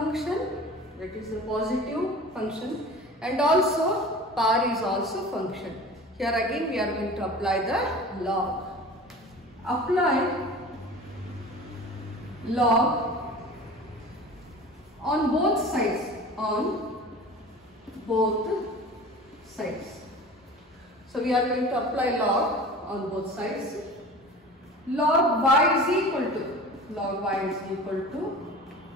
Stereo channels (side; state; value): both; normal; correlation 0.39